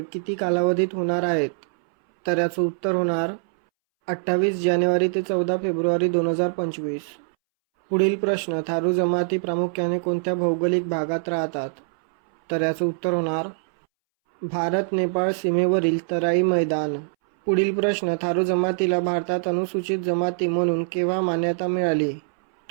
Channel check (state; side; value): silent; left; 63 dB below the other